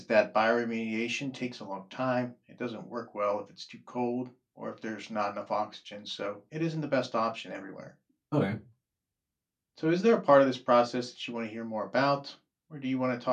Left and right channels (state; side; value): identical; both; correlation 1.00